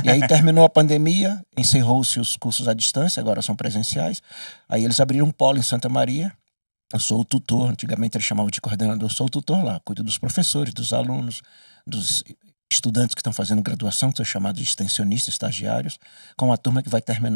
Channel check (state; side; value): inverted; both; correlation -1.00